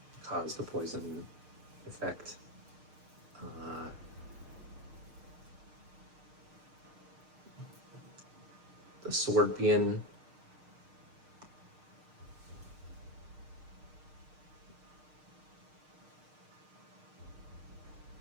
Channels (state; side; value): late; left; 6.5 ms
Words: cause the poison effect. the Scorpion.